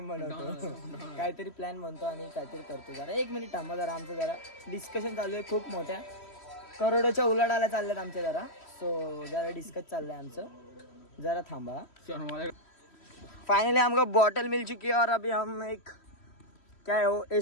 बनवतो काहीतरी प्लॅन बनतो आणि काहीतरी करतो। जरा एक मिनिट थांबा जरा, आमचं जरा डिस्कशन चालू आहे, खूप मोठ्या करोडोच्या उलाढाल्या चालल्यात आमच्या जरा। सो जरा डिस्कस चाललंय आमचं, जरा थांबा। फाइनली हमको बॉटल मिल चुकी है और अभी हम एक क्या है वो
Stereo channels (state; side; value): late; right; 3.1 ms